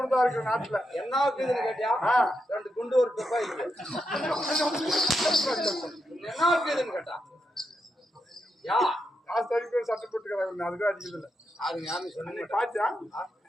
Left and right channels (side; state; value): both; normal; correlation 0.84